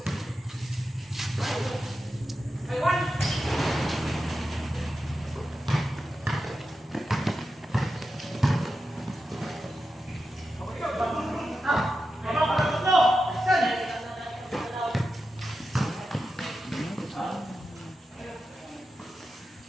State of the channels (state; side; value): normal; both; correlation 0.90